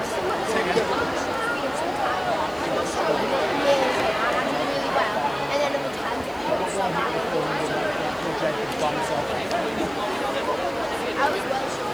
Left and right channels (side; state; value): left; noise; hiss, 26 dB below the sound